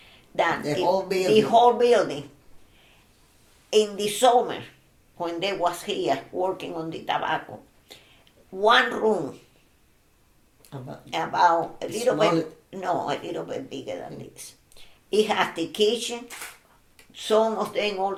that The whole the building. whole building. In the summer, when they was here working on the tobacco, one room about a little bit, no, a little bit bigger than this. It has the kitchen, some of them all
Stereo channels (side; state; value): both; identical; correlation 1.00